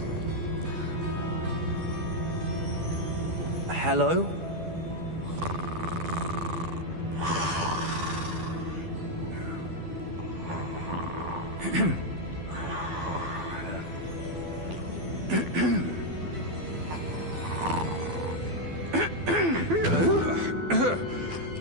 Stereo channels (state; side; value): late; left; 12 ms